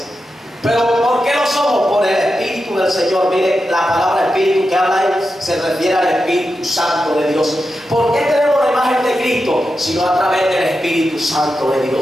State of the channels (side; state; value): both; normal; correlation 0.89